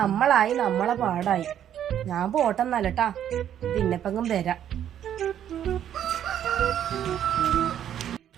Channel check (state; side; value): quieter; left; 10.2 dB